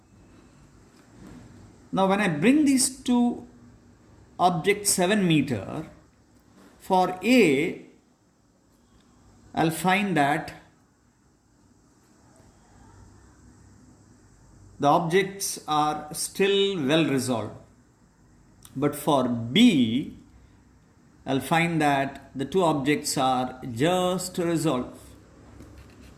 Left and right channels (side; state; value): both; identical; correlation 1.00